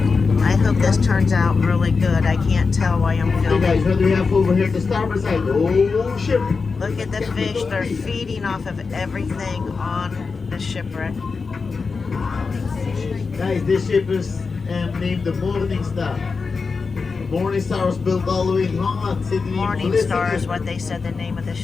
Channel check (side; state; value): right; quieter; 4.7 dB